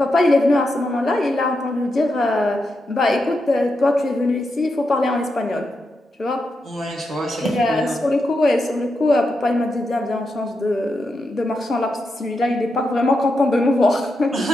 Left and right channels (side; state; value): both; normal; correlation 0.86